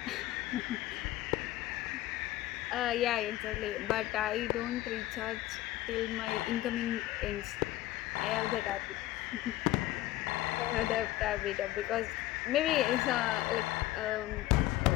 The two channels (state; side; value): quieter; right; 15.9 dB